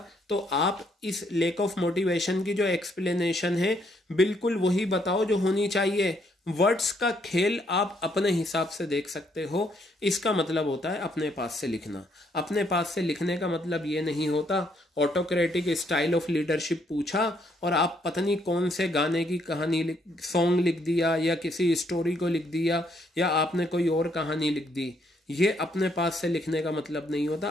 तो आप इस लेक ऑफ मोटिवेशन की जो एक्सप्लेनेशन है बिल्कुल वही बताओ जो होनी चाहिए। वर्ड्स का खेल आप अपने हिसाब से देख सकते हो, इसका मतलब होता है अपने पास से लिखना। अपने पास से लिखने का मतलब ये नहीं होता ऑटोक्रेटिक स्टाइल ऑफ लीडरशिप पूछा और आप पता नहीं कौन से गाने की कहानी सॉन्ग लिख दिया या किसी स्टोरी को लिख दिया या आपने कोई और कहानी लिख दी। ये अपने पास से लिखने का मतलब नहीं होता।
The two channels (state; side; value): normal; both; correlation 0.71